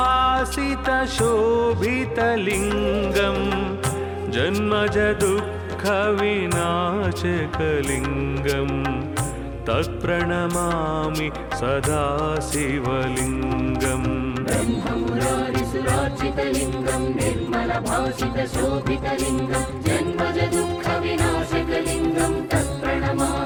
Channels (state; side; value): identical; both; correlation 1.00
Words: जन्मजदुःखविनाशकलिङ्गं तत्प्रणमामि सदा शिवलिङ्गम् ब्रह्ममुरारिसुरार्चितलिङ्गं निर्मलभासितशोभितलिङ्गं जन्मजदुःखविनाशकलिङ्गं